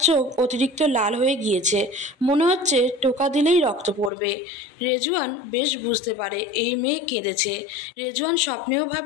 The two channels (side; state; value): right; drops out; at 4.1 s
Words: চোখ অতিরিক্ত লাল হয়ে গিয়েছে, মনে হচ্ছে টোকা দিলেই রক্ত পড়বে। রেজওয়ান বেশ বুঝতে পারে এই মেয়ে কেঁদেছে। রেজওয়ান স্বপ্নেও